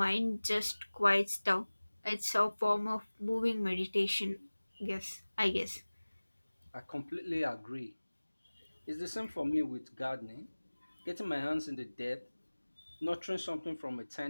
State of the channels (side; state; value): both; inverted; correlation -1.00